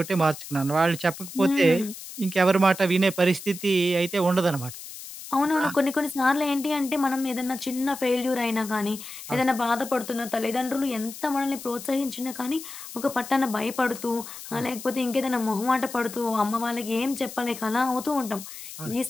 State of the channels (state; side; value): noise; left; hiss, 12 dB below the sound